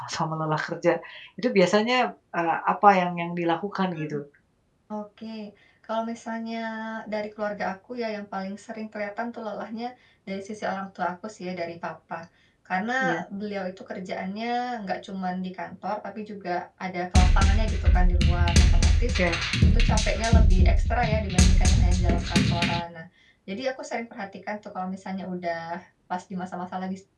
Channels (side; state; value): both; identical; correlation 1.00